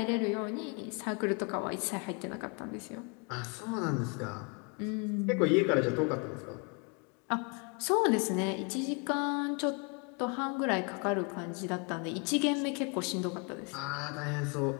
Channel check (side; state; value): right; quieter; 34.2 dB